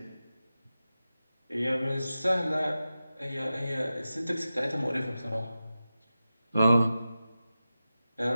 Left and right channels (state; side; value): inverted; both; correlation -0.93